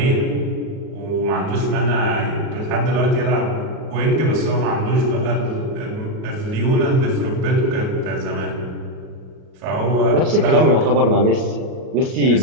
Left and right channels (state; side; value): late; left; 38 ms